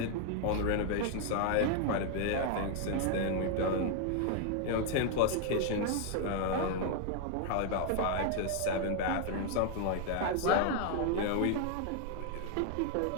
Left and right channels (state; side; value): different; both; correlation 0.00